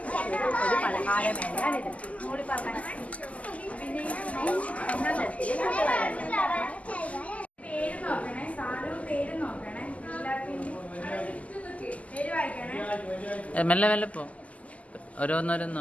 കൂടി പറഞ്ഞ പേര് നോക്കണേ, സാധനവും പേര് നോക്കണേ. പേര് വായിക്കണേ. മെല്ലെ മെല്ലെ പോ, ഓരോന്നോരോന്ന്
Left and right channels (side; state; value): right; late; 0.070 ms